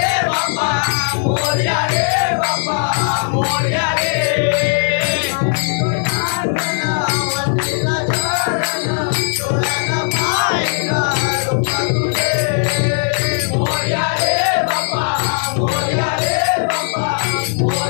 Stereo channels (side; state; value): right; silent; 65 dB below the other